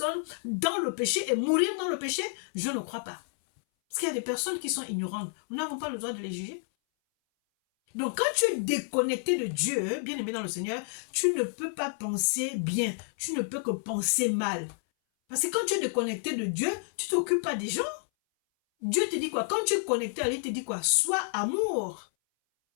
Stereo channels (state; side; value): silent; right; 58 dB below the other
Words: dans le péché et mourir dans le péché? Je ne crois pas. Parce qu'il y a des personnes qui sont ignorantes. Nous n'avons pas le droit de les juger. Donc, quand tu es déconnecté de Dieu, bien aimé dans le Seigneur, tu ne peux pas penser bien. Tu ne peux que penser mal. Parce que quand tu es déconnecté de Dieu, tu ne t'occupes pas des gens. Dieu te dit quoi? Quand tu es connecté à lui, il te dit quoi? Sois amour.